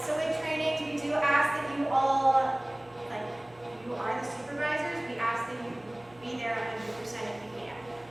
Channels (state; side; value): noise; right; hum, 29 dB below the sound